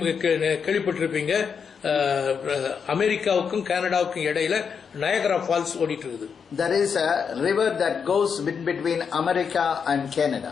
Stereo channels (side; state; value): right; quieter; 6.5 dB